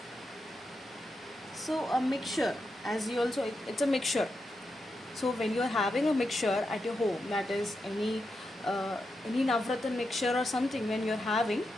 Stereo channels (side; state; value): both; normal; correlation 0.86